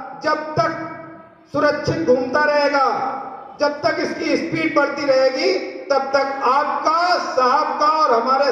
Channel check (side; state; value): both; identical; correlation 1.00